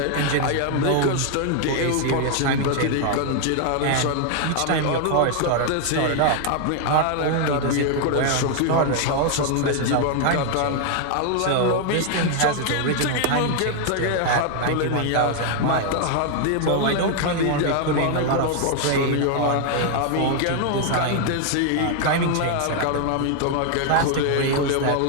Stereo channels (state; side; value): different; both; correlation 0.00